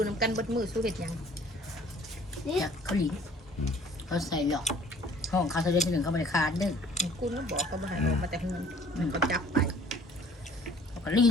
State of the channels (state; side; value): normal; both; correlation 0.54